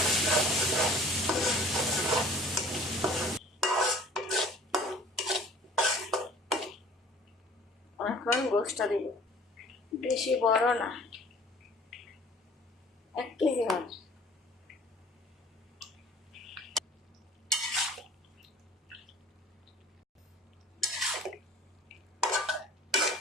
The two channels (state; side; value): normal; both; correlation 0.49